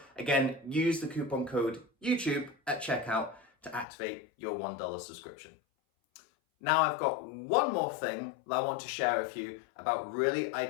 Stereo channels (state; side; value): drops out; right; at 3.9 s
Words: Again, use the coupon code YouTube at checkout to activate your $1 subscription. Now I've got one more thing that I want to share with you about really